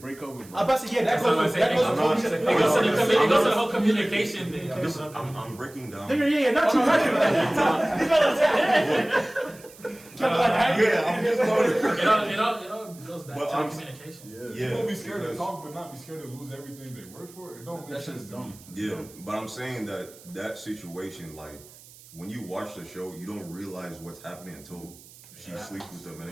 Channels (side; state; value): right; noise; hiss, 22 dB below the sound